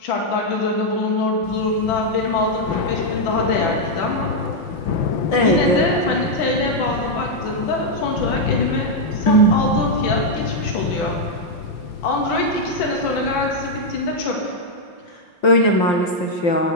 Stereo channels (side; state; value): right; late; 5.7 ms